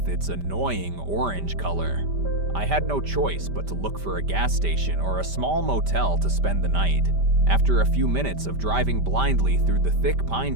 its annoying orange color. I had no choice but to look for a gas station or a small motel to spend the night. After a few minutes of driving blindly through the thick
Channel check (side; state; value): left; late; 5.1 ms